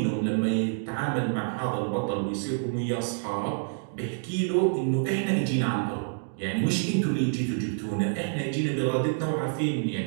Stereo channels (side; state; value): left; silent; digital silence